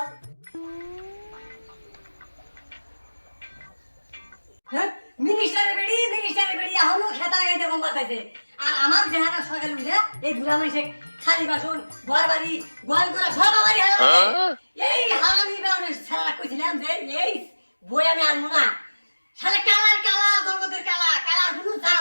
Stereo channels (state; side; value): inverted; both; correlation -1.00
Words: হ্যাঁ মিনিস্টারের বেড়ি এখনো খেতা গাইতে কম বাতাইছে। আর আমার দেহাটা সকালে উঠে এই বুড়া মানুষে খালি বাসন ঘর বাড়ি গোয়াল করা সব আমারই এই হারামি বেড়ে সারা কইছিলাম যে এই বই আমি আনবো না। সারা কালা জগতের কালা কোনো